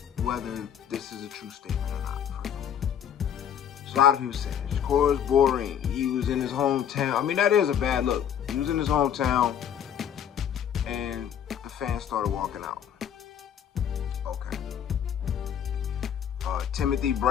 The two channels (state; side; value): quieter; right; 9.1 dB